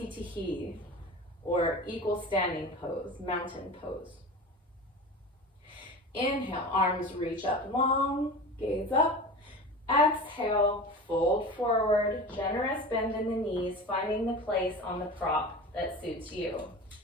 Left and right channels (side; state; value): both; normal; correlation 0.33